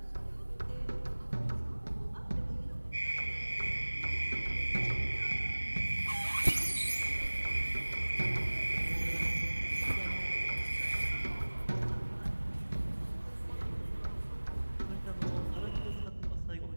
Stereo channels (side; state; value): both; inverted; correlation -1.00